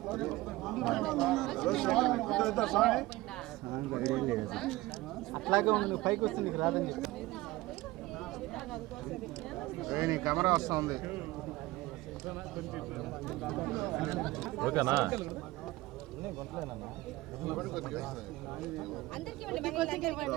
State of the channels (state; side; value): quieter; left; 19.1 dB